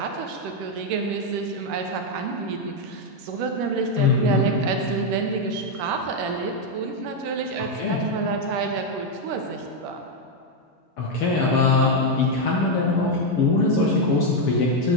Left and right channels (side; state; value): both; normal; correlation 0.02